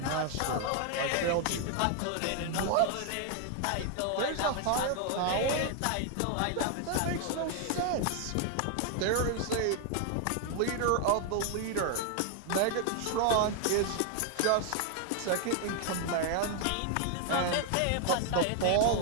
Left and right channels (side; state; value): both; different; correlation 0.00